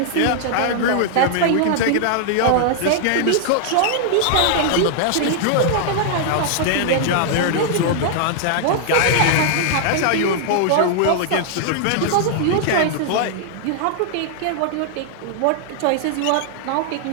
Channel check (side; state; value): both; different; correlation -0.01